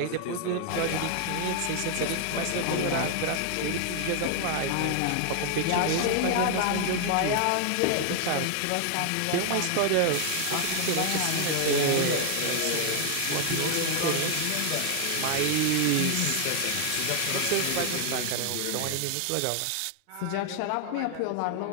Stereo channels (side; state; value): both; different; correlation 0.00